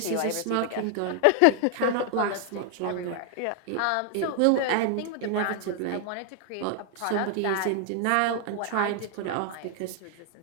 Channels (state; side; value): different; both; correlation 0.00